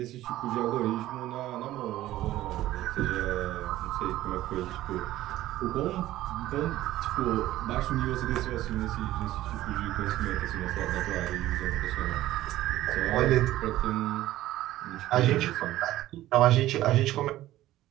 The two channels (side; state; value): left; quieter; 14.9 dB